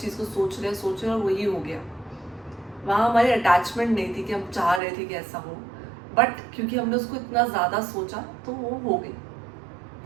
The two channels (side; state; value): left; drops out; at 4.8 s